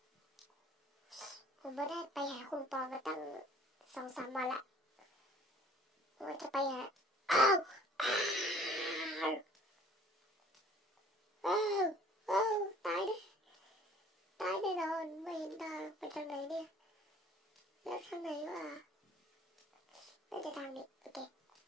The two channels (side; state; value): both; normal; correlation 0.53